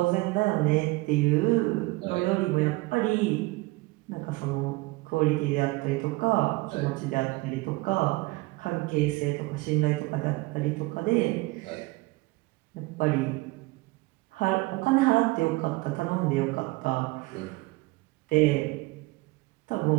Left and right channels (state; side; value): quieter; left; 22.6 dB